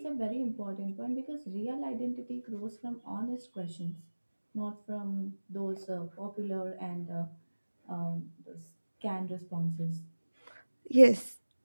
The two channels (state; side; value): inverted; both; correlation -1.00